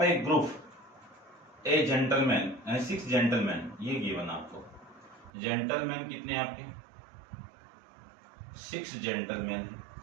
a group a gentleman, 6 gentleman, ये गिवन आपको। जेंटलमैन कितने आपके? 6 जेंटलमैन है,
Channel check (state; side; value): drops out; left; at 5.3 s